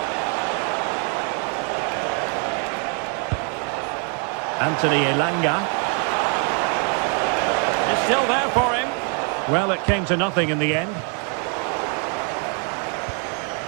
Anthony Elanga. It's still there for him. Well, it came to nothing in the end.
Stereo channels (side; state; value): left; quieter; 39.6 dB